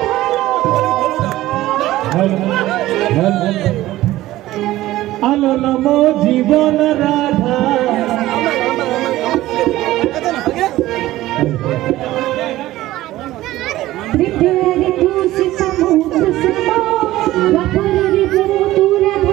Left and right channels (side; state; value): left; quieter; 16.0 dB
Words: আলো নমো জীবন Radha Prepare to sit samudra sama Vakarari bhutu